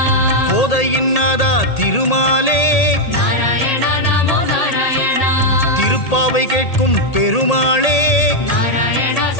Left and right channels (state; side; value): late; right; 1.8 ms